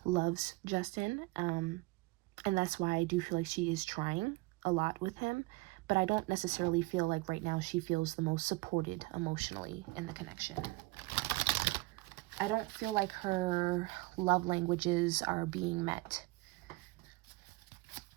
loves Justin, and that's why I do feel like she is trying a lot with him, but I don't necessarily feel like right now she feels the most supported emotionally in the connection. I don't feel like her love languages are being met.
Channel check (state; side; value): quieter; left; 22.8 dB